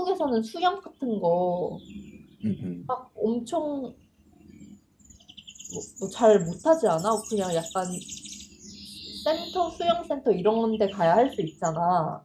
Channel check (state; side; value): identical; both; correlation 1.00